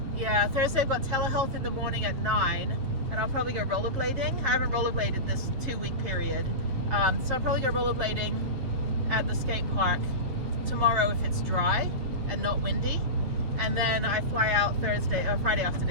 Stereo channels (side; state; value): left; late; 7.6 ms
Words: Yeah, Thursday I've got telehealth in the morning at 9, and I'll probably go rollerblading. I haven't rollerbladed this 2-week period, so I'll probably go rollerblading at the skate park tomorrow if it's dry and not windy, and then I fly out Friday